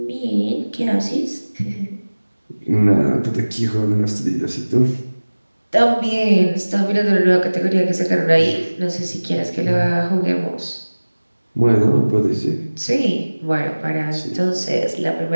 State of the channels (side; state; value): both; inverted; correlation -1.00